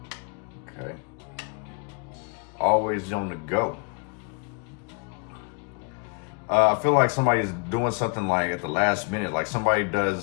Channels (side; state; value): right; quieter; 39.1 dB